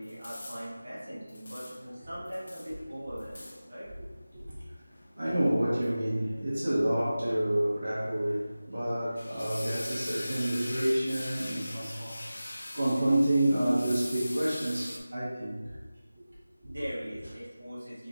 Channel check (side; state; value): both; inverted; correlation -0.96